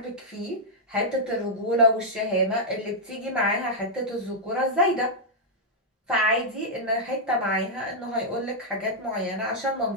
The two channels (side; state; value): both; normal; correlation -0.05